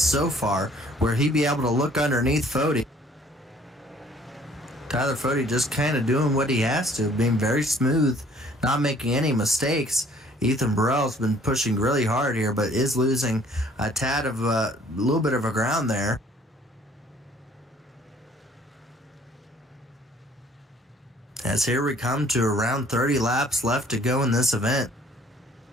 far, where he'd be able to look underneath Fody. Tyler Fody just kind of doing what he has to, being very smooth, not making any mistakes. Ethan Burrell's been pushing really hard here, but is losing a tad of a little bit of a ground there. As here we come to around 30 laps left to go in this event.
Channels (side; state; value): both; normal; correlation 0.57